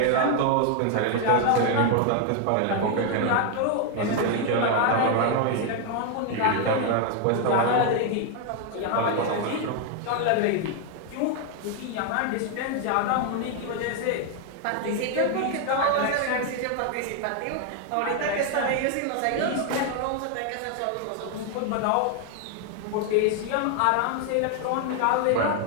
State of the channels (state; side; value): different; both; correlation 0.01